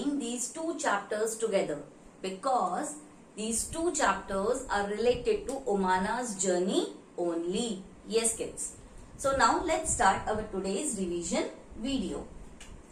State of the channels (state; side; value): identical; both; correlation 1.00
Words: these two chapters together? Because these two chapters are related to Omana's journey only. Yes, kids. So now let's start our today's revision video.